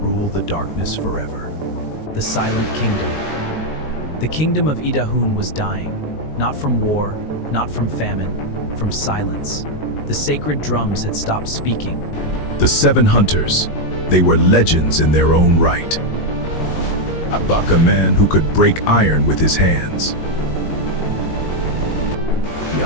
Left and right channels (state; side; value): late; right; 19 ms